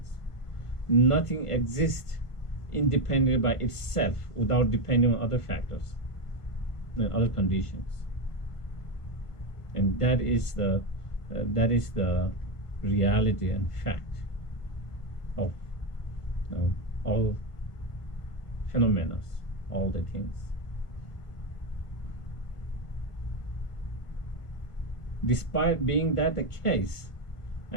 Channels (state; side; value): late; right; 1.4 ms